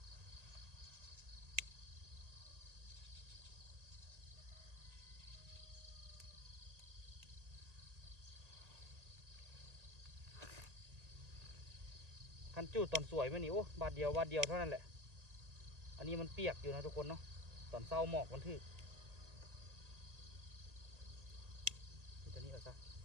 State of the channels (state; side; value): late; left; 1.8 ms